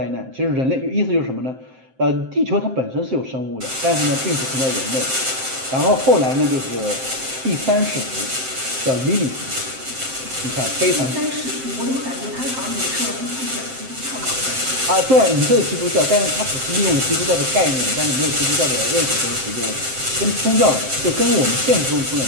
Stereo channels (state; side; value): late; left; 7.7 ms